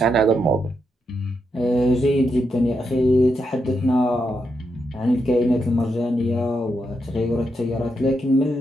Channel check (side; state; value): both; normal; correlation 0.83